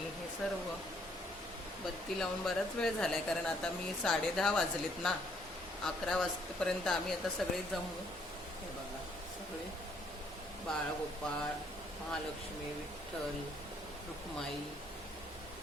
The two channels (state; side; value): normal; both; correlation 0.66